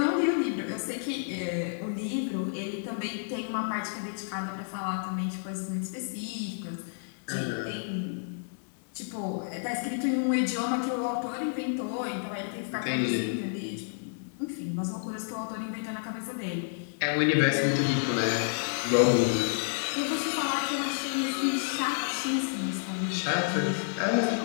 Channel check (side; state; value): right; silent; digital silence